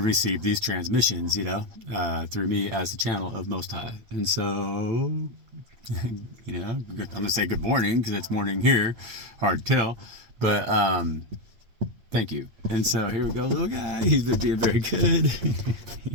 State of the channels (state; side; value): late; left; 8.6 ms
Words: receive these transmissions, through me as the channel of Most High. And so, I'm going to say good morning, because it's morning here. Hard to tell, but thank you. And so here we go, little guy. He's been being very good.